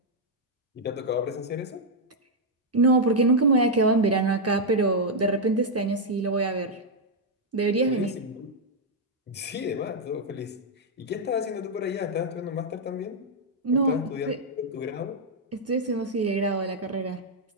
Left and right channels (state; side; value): normal; both; correlation -0.03